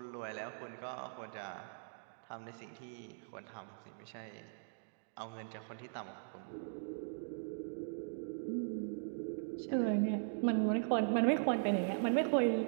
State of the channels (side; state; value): left; silent; digital silence